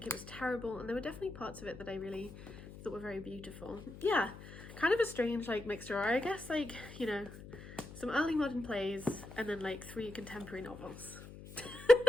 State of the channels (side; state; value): left; noise; hum, 14 dB below the sound